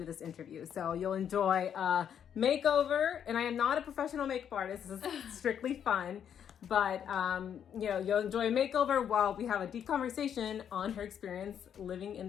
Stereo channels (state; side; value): quieter; right; 8.7 dB